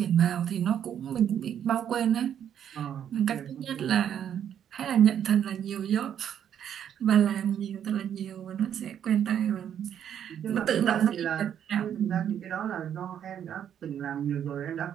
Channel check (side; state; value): left; quieter; 9.4 dB